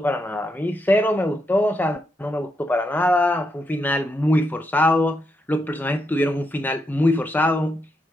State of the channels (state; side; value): normal; both; correlation 0.81